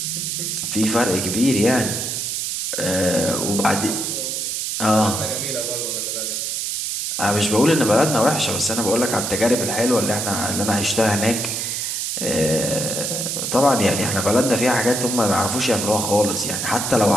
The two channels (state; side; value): noise; right; hiss, 2 dB below the sound